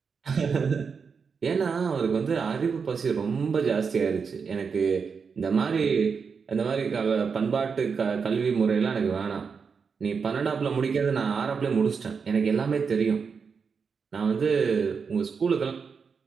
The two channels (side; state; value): left; quieter; 5.7 dB